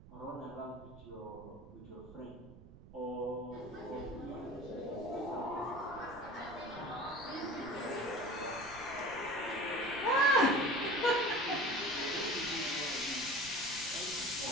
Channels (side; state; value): right; noise; rumble, 18 dB below the sound